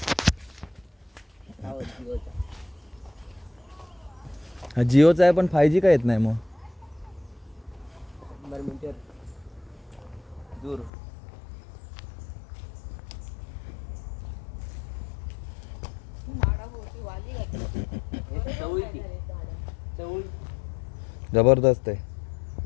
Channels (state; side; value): drops out; right; at 10.9 s